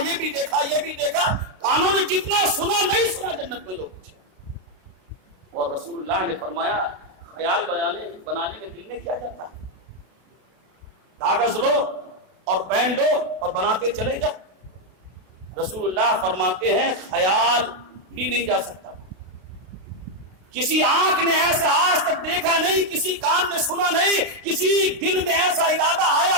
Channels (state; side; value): late; left; 32 ms